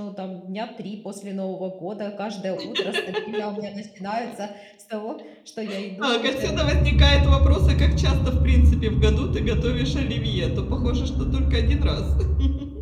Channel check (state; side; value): identical; both; correlation 1.00